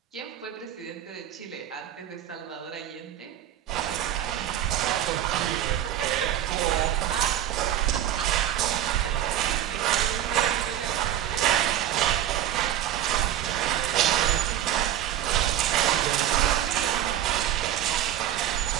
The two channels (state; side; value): quieter; left; 11.5 dB